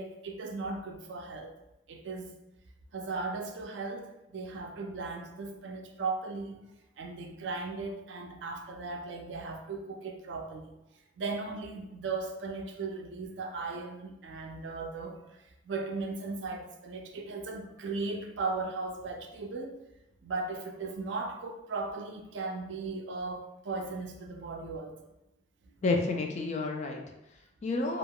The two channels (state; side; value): normal; both; correlation 0.10